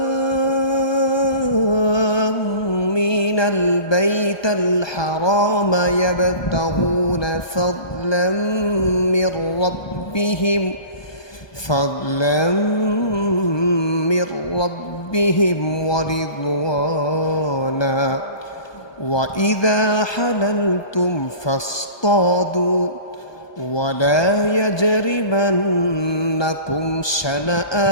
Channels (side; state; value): right; late; 1.2 ms